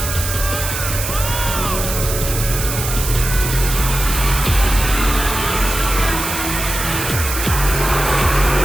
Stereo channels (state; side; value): noise; right; hiss, 5 dB below the sound